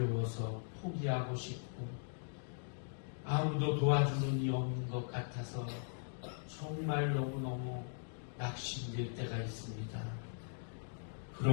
포기하고 싶고 아무도 도와주는 이 없는 것 같아서 정말 너무너무 낙심될 때가 있습니다.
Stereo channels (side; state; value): right; silent; digital silence